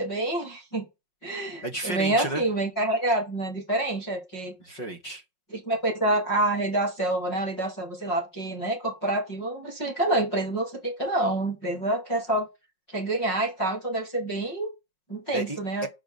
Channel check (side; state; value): right; late; 5.5 ms